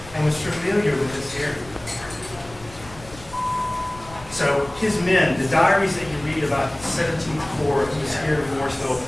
and was familiar with this area. So his men, the diaries that you read about the 17th Corps who was here in Morrisville,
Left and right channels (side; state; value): left; noise; rumble, 19 dB below the sound